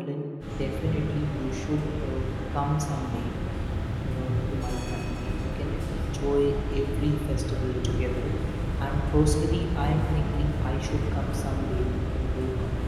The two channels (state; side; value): identical; both; correlation 1.00